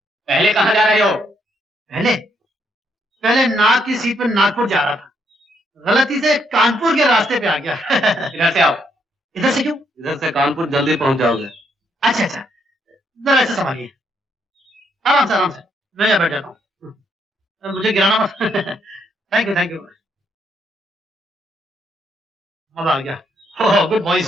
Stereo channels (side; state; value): both; normal; correlation 0.74